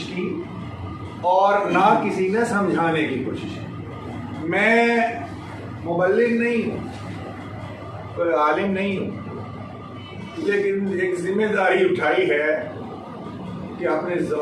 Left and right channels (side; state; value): both; identical; correlation 1.00